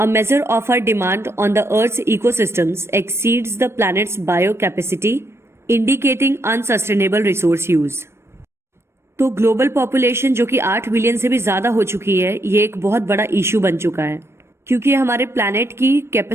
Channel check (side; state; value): left; late; 0.12 ms